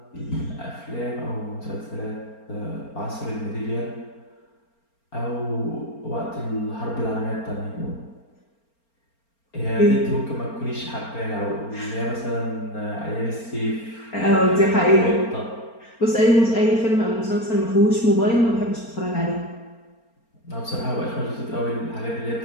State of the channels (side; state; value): right; late; 4.4 ms